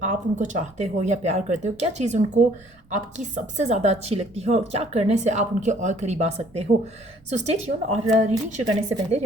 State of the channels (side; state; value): right; noise; rumble, 30 dB below the sound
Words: आप उनको चाहते हो या प्यार करते हो, क्या चीज़ उनको आपकी सबसे ज़्यादा अच्छी लगती है और क्या करने से आप उनके और करीब आ सकते हो। So stay tune. और रीडिंग शुरू करने से पहले